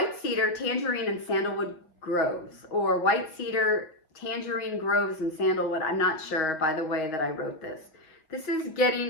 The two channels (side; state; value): right; late; 6.3 ms